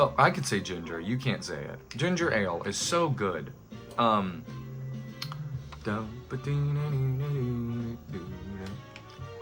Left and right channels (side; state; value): both; identical; correlation 1.00